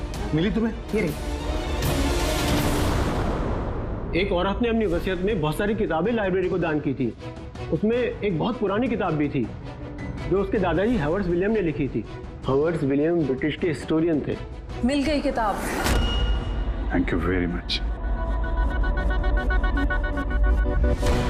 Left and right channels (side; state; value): both; identical; correlation 1.00